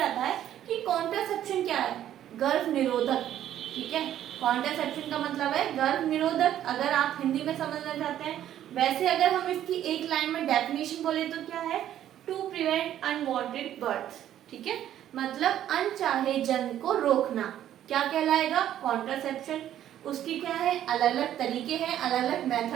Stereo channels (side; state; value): left; quieter; 11.5 dB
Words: आता है कि कॉन्ट्रासेप्शन क्या है, गर्भ निरोधक। ठीक है, कॉन्ट्रासेप्शन का मतलब है गर्भ निरोधक, अगर आप हिंदी में समझना चाहते हैं। वैसे अगर हम इसकी एक लाइन में डेफिनेशन बोले तो क्या है, टू प्रिवेंट अनवांटेड बर्थ। ठीक है, मतलब अनचाहे जन्म को रोकना क्या कहलाएगा, कॉन्ट्रासेप्शन। उसकी क्या है, अलग अलग तरीके हैं, अलग अलग